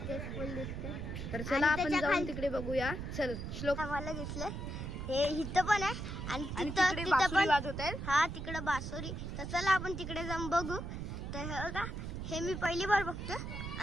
फुल दिसते. तर चला आपण जाऊन तिकडे बघूया. चल श्लोक. मला दिसले हे इथं पण आहे आणि तिकडे बासुरी वाजवत आहेत. हा तिकडे बासुरी. तर चला आपण तिकडे जाऊन बघू. तर बघा हे मी पहिली बार बघतो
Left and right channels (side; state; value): right; noise; rumble, 5 dB below the sound